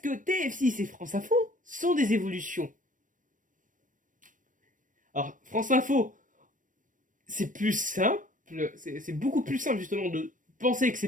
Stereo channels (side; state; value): left; late; 0.38 ms